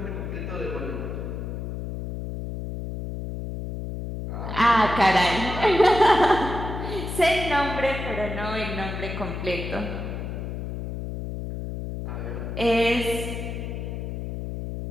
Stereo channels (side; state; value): left; noise; hum, 6 dB below the sound